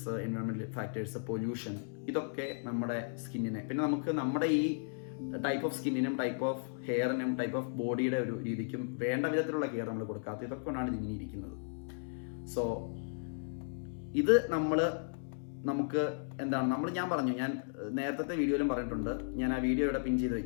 environmental factors, pollution, ഇതൊക്കെ നമ്മുടെ സ്കിന്നിനെ, പിന്നെ നമുക്ക് നമ്മുടെ ഈ ടൈപ്പ് ഓഫ് സ്കിന്നിനും ടൈപ്പ് ഓഫ് ഹെയറിനും ടൈപ്പ് ഓഫ് ബോഡിയുടെ ഒരു രീതിക്കും വേണ്ട വിധത്തിലുള്ള കെയർ നമ്മൾ കൊടുക്കാത്ത, ഇതൊക്കെ കൊണ്ടാണ് ഇതിങ്ങനെ ഇരിക്കുന്നത്. സോ ഇത് നമുക്ക് എന്താണ് ഞാൻ പറഞ്ഞു, ഞാൻ നേരത്തെ വീഡിയോയിലും പറഞ്ഞിട്ടുണ്ട്, ഞാൻ ആ വീഡിയോ ഇവിടെ പിൻ ചെയ്ത്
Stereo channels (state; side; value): silent; right; digital silence